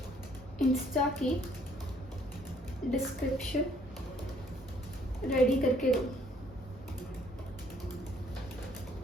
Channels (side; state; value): both; normal; correlation 0.63